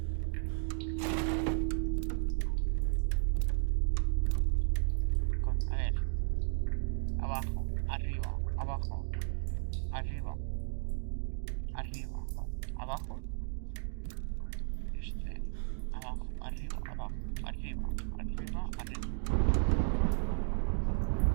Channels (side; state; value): left; silent; digital silence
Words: A ver. Abajo, arriba, abajo, arriba, arriba, abajo. Abajo, arriba, abajo, arriba, arriba, arriba.